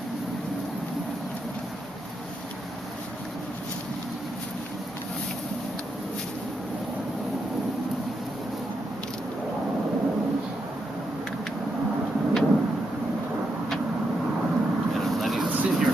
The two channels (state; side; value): normal; both; correlation 0.82